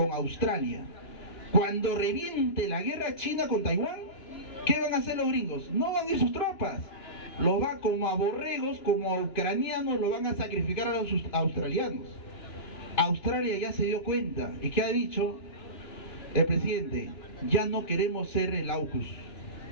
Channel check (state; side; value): late; right; 2.9 ms